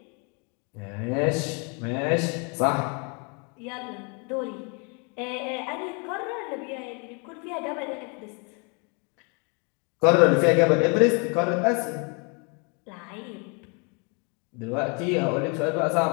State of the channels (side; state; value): right; quieter; 34.2 dB